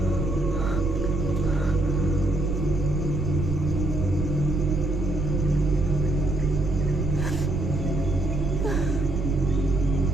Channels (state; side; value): noise; right; rumble, 5 dB below the sound